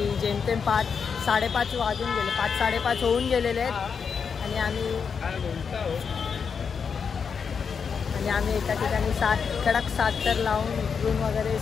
जेमतेम 5-5:30 वाजून गेले, 5-5:30 होऊन गेलेले आहेत आणि आम्ही एका ठिकाणी कडक 7 थर लावून उतरून वगैरे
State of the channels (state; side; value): quieter; right; 6.2 dB